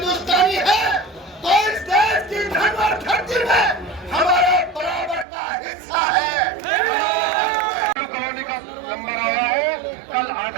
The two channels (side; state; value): left; drops out; at 5.2 s